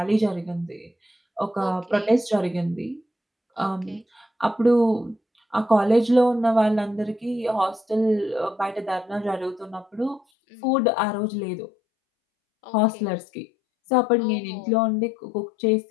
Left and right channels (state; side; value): drops out; right; at 10.2 s